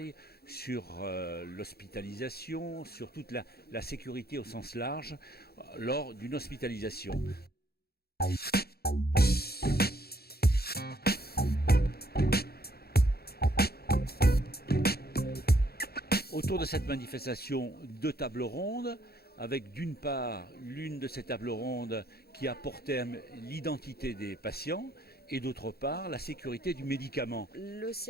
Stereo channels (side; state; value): right; late; 0.46 ms